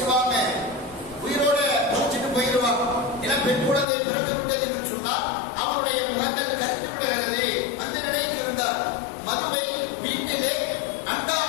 உயிரோட புதைச்சிட்டு போயிடுவாங்க. ஏன்னா பெண் குழந்தை பிறந்து விட்டது என்று சொன்னால் அவருடைய முகங்கள் கருத்து விடுகிறது. அந்த நிலையில் இருந்தார். மதுவை வீட்டிலே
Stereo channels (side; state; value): right; drops out; at 3.9 s